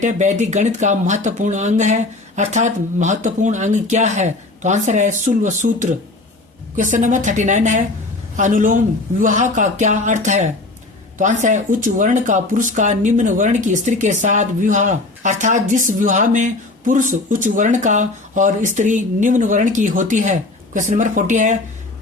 है, वैदिक गणित का महत्वपूर्ण अंग है, अर्थात महत्वपूर्ण अंग क्या है? तो आंसर है शुल्व सूत्र। क्वेश्चन नंबर 39 है, अनुलोम विवाह का क्या अर्थ है? तो आंसर है उच्च वर्ण का पुरुष का निम्न वर्ण की स्त्री के साथ विवाह, अर्थात जिस विवाह में पुरुष उच्च वर्ण का और स्त्री निम्न वर्ण की होती है। क्वेश्चन नंबर 40 है,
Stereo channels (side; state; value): right; quieter; 3.1 dB